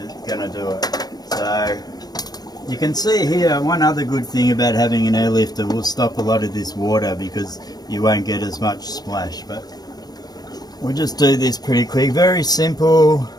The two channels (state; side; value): late; right; 0.19 ms